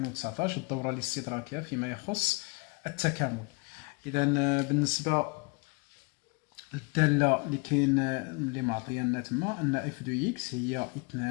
الدوره الاستدراكيه فيما يخص التكامل. اذا بالنسبه للداله اللي كاين اللي معطيه لنا تما ان اف دو اكس هي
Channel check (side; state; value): right; quieter; 29.4 dB